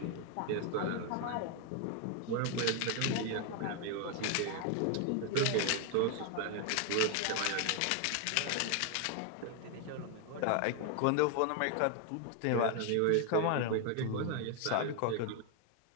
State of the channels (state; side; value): different; both; correlation 0.00